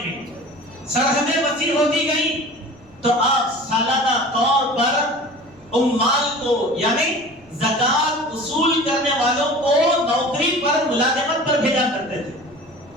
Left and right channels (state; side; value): noise; right; rumble, 28 dB below the sound